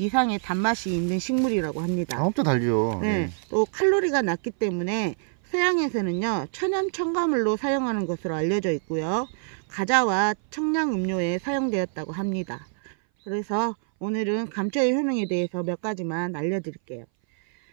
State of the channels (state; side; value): silent; left; 59 dB below the other